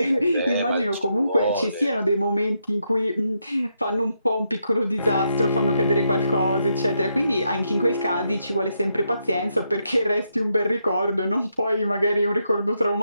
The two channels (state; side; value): inverted; both; correlation -0.80